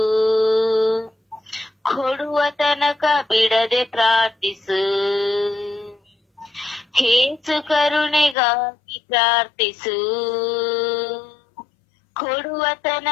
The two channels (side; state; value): right; drops out; at 8.3 s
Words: ಕೊಡುವ ತನಕ ಬಿಡದೆ ಪ್ರಾರ್ಥಿಸು. ಯೇಸು ಕರುಣೆಗಾಗಿ ಪ್ರಾರ್ಥಿಸು, ಕೊಡುವ